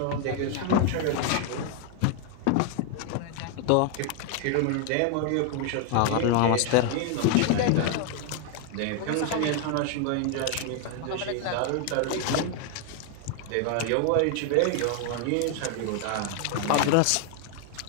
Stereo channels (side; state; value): both; different; correlation 0.00